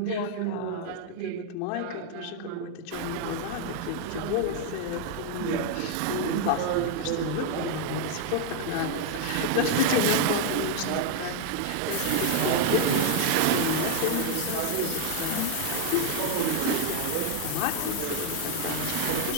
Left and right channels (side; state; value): both; different; correlation 0.00